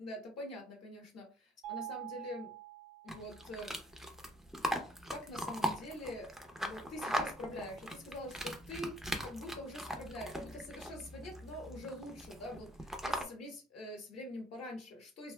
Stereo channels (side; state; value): both; normal; correlation 0.61